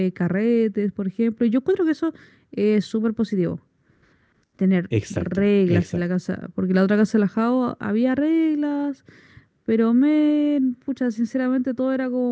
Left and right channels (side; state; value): both; identical; correlation 1.00